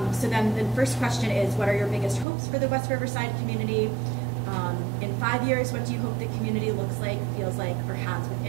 So then the first question is, what are your biggest hopes for the West Riverside community? In 5 years, what do you hope the community looks like, feels like, or has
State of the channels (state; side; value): drops out; left; at 2.2 s